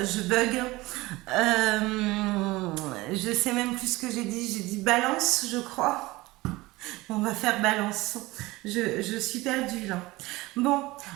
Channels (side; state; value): left; quieter; 20.3 dB